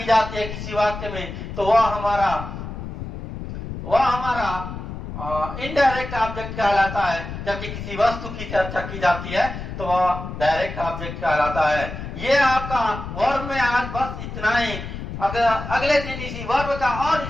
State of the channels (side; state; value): left; noise; rumble, 8 dB below the sound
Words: जाती है किसी वाक्य में तो वह हमारा इनडायरेक्ट ऑब्जेक्ट कहलाता है, जबकि किसी वस्तु की चर्चा की जाती है तो वह डायरेक्ट ऑब्जेक्ट कहलाता है। ये आपका वर्ब में आज बस इतना ही। अगर अगले दिन इसी वर्ब का और